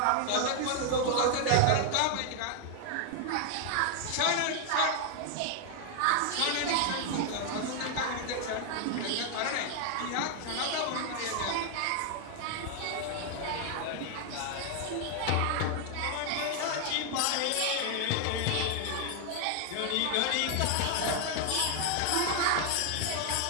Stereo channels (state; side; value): different; both; correlation 0.00